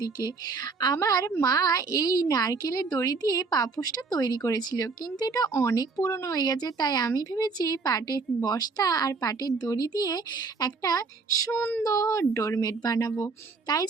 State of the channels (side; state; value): left; quieter; 4.4 dB